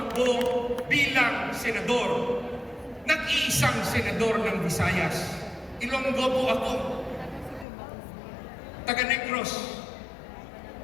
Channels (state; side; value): drops out; right; at 7.7 s